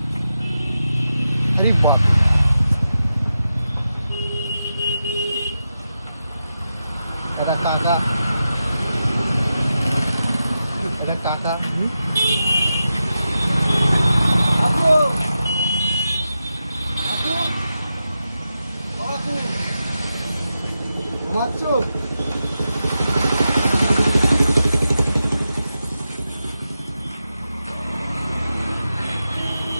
আরে বাহ, এটা কাকা, এটা কাকা। কাকু কাকু কাকু ঘুমাচ্ছ?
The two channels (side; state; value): both; inverted; correlation -0.90